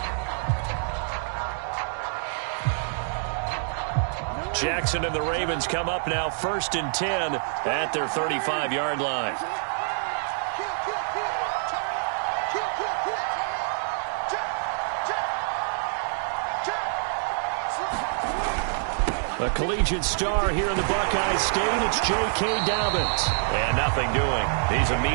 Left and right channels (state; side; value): silent; left; digital silence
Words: Jackson and the Ravens come up now 1st and 10 at their 35-yard line. A collegiate star here in the Buckeye State, it's J.K. Dobbins. And nothing doing. He's